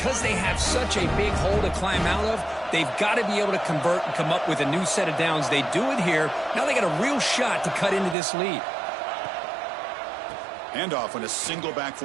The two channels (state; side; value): drops out; left; at 8.2 s